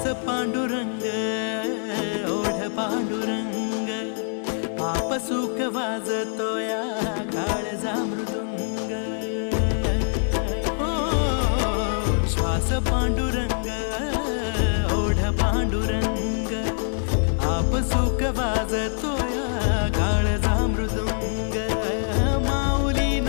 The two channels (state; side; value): silent; right; digital silence